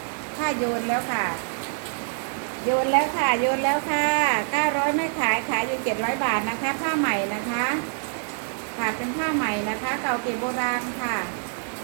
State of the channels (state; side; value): silent; left; digital silence